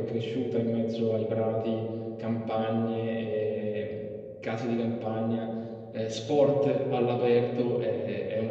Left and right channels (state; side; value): identical; both; correlation 1.00